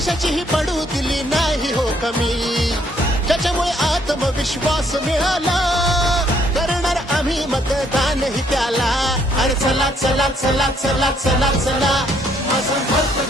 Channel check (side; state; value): both; normal; correlation 0.68